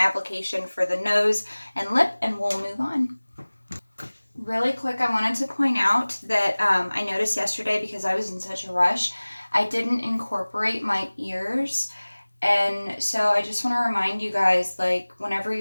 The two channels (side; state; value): both; inverted; correlation -1.00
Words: for the nose and lip, and we'll move on. Really quick, I wanted to point out that I noticed yesterday, because I was in such a rush, I didn't incorporate my ears. And so I just want to remind you guys, like, whenever